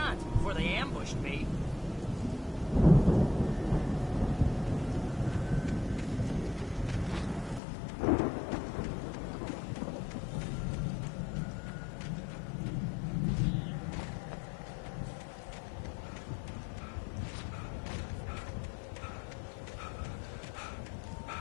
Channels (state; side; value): drops out; right; at 7.6 s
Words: before they ambushed me.